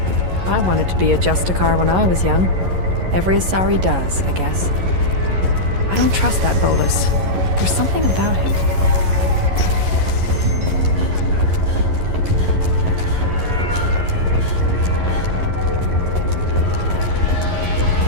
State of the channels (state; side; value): late; left; 11 ms